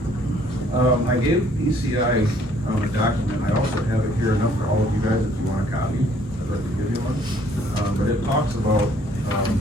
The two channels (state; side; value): normal; both; correlation 0.62